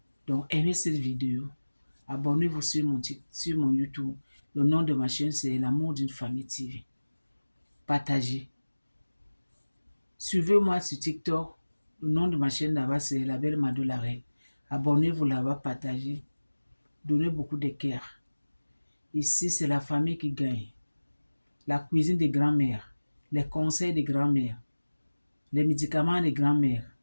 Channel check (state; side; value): inverted; both; correlation -1.00